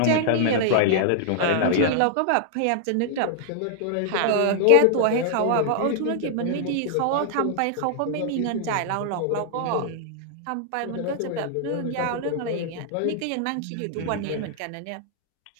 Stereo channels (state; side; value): different; both; correlation -0.01